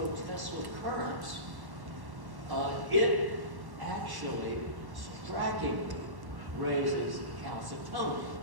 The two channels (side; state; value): left; late; 1.1 ms